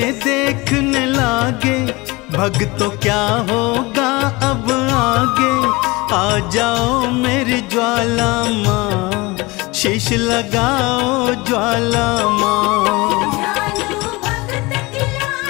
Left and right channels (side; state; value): right; quieter; 23.4 dB